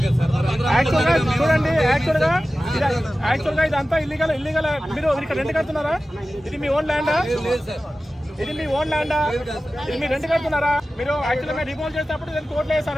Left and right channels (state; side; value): normal; both; correlation 0.95